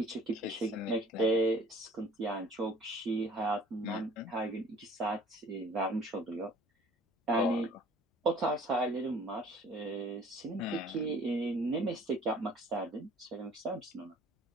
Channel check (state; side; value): normal; both; correlation 0.52